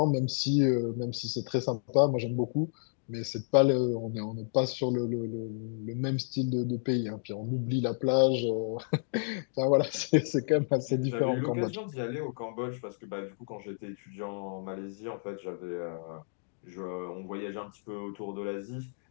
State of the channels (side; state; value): right; silent; digital silence